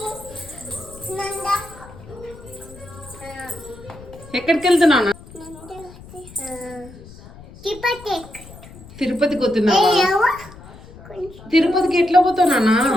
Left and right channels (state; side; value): noise; left; rumble, 18 dB below the sound